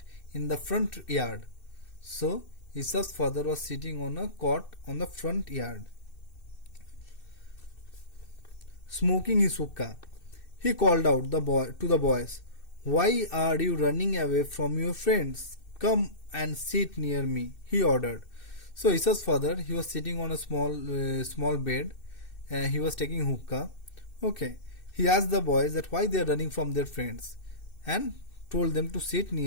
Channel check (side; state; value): right; late; 2.6 ms